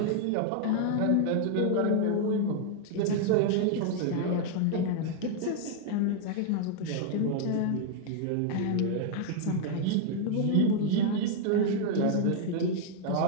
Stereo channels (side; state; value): both; different; correlation 0.00